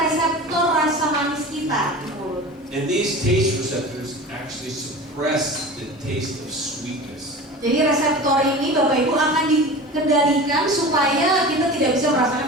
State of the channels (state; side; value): normal; both; correlation 0.34